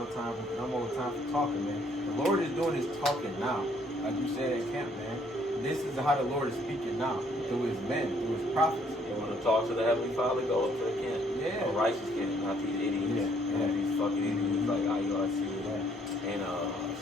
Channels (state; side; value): normal; both; correlation 0.66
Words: more time for talking, man. The Lord is doing His talking now, like you said at camp, man. This is how the Lord is speaking now through His men, through His prophets. You want to talk to the Heavenly Father? Go up to the camp. Yeah. A righteous camp, not these idiots. Yeah. These fucking idiots like IUIC Yeah. and